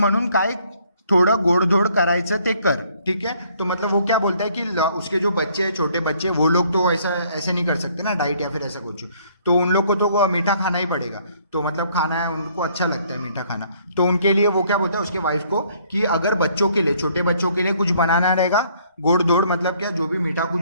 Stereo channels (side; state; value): both; inverted; correlation -0.63